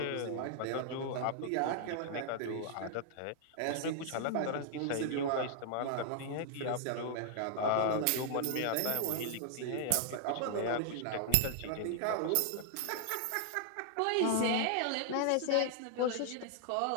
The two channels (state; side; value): different; both; correlation 0.00